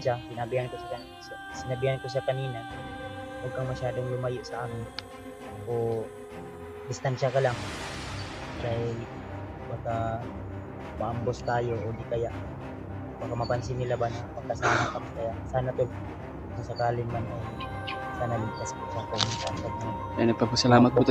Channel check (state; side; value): identical; both; correlation 1.00